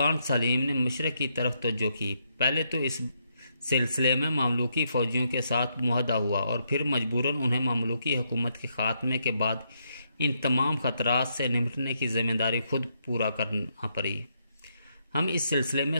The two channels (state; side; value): inverted; both; correlation -0.77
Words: سلیم نے مشرق کی طرف توجہ کی۔ پہلے تو اس سلسلے میں مملوکی فوجیوں کے ساتھ معاہدہ ہوا اور پھر مجبوراً انہیں مملوکی حکومت کے خاتمے کے بعد ان تمام خطرات سے نمٹنے کی ذمہ داری خود پورا کرنا پڑی۔ ہم اس سلسلے میں